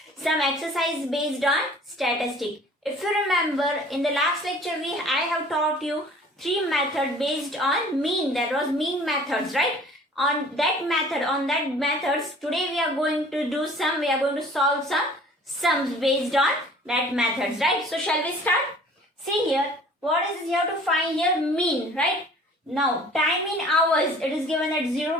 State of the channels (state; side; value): normal; both; correlation 0.50